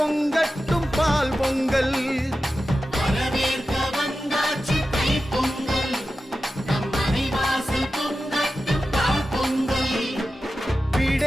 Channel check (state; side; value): normal; both; correlation 0.93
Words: பால் பொங்கல். வரவேற்க வந்தாச்சு தை பொங்கல், நம் மனைவாசல் பொங்கட்டும் பால் பொங்கல்.